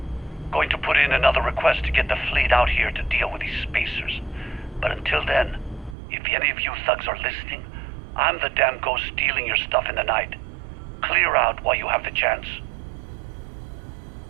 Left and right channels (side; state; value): left; drops out; at 6.0 s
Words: Going to put in another request to get the fleet out here to deal with these spacers. But until then, if any of you thugs are listening, I'm the damn ghost stealing your stuff in the night. Clear out while you have the chance.